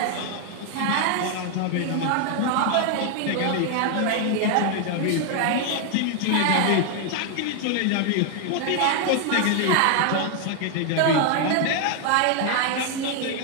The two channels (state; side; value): different; both; correlation 0.00